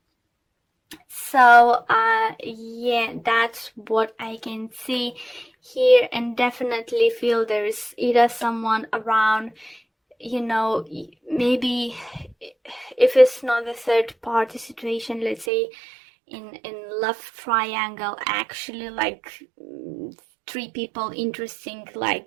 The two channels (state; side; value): drops out; left; at 15.5 s